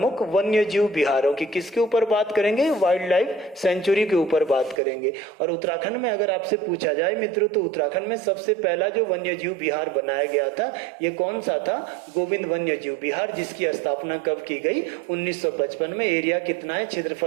वन्य जीव विहारों की। किसके ऊपर बात करेंगे? वाइल्ड लाइफ सेंचुरी के ऊपर बात करेंगे। और उत्तराखंड में अगर आपसे पूछा जाए मित्रों तो उत्तराखंड में सबसे पहला जो वन्य जीव विहार बनाया गया था ये कौन सा था? गोविंद वन्य जीव विहार, जिसकी स्थापना कब की गई? 1955 में। एरिया कितना है?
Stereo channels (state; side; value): drops out; left; at 4.8 s